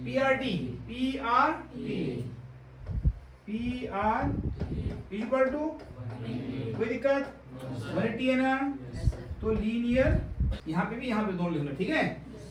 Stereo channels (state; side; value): identical; both; correlation 1.00